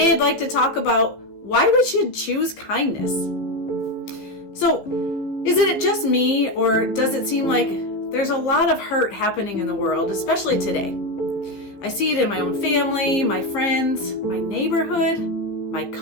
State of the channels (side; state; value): right; late; 15 ms